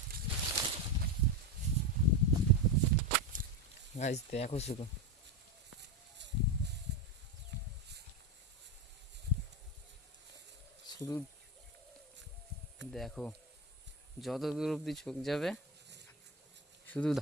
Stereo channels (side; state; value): both; normal; correlation 0.15